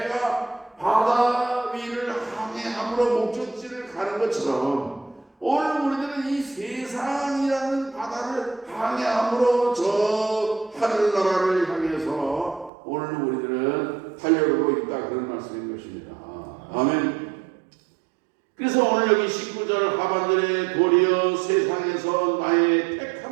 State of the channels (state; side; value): drops out; left; at 12.7 s